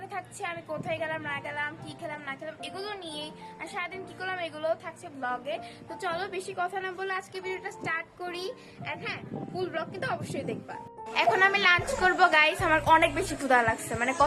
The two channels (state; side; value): identical; both; correlation 1.00